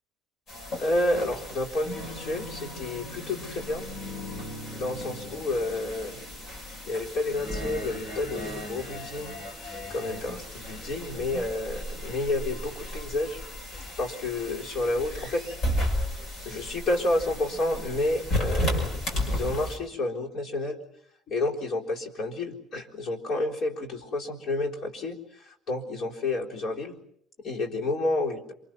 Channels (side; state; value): both; normal; correlation 0.60